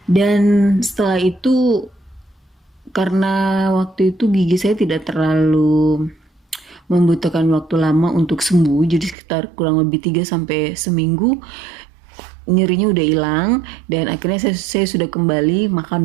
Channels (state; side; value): drops out; left; at 9.2 s